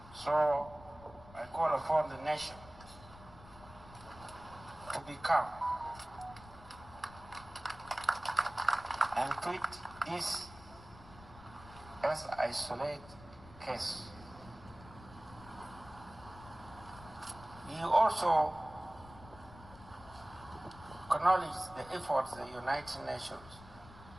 So I call upon the nation to be calm and treat this as an isolated case. He also acknowledged the efforts the United Nations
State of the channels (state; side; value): noise; left; rumble, 18 dB below the sound